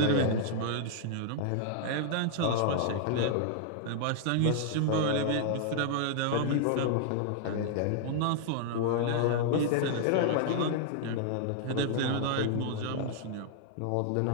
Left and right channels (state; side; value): different; both; correlation -0.01